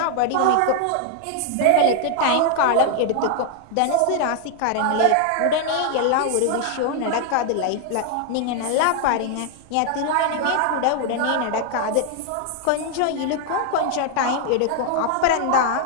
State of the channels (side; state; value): both; different; correlation 0.00